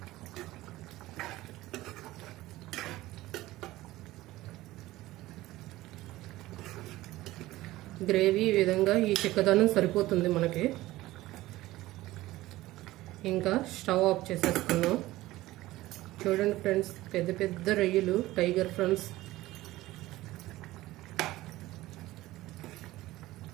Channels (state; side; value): quieter; left; 17.2 dB